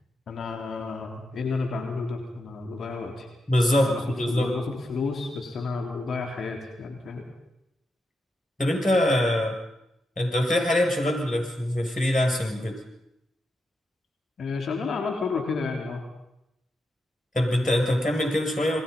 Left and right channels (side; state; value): both; normal; correlation 0.85